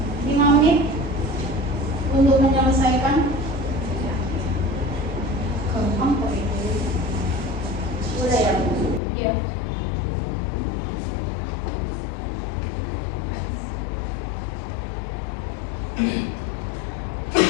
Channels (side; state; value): right; drops out; at 9.0 s